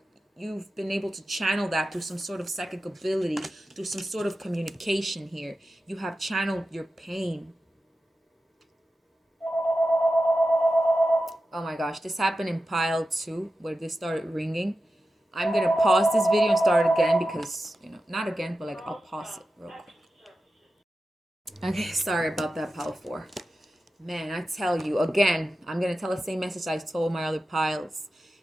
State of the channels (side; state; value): both; normal; correlation 0.93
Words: you've been able to channel that through some sort of psychic ability, through some sort of communication here. You have channeled your pain. Oh my gosh, this happened in pile 2 where this started ringing. I'm going to pause this video and start again because, you know, not again, but like I'll pause it real quick. Okay, sorry about that, pile 4. Man, I tell you, again, I'm going to tell the same message I told my other piles.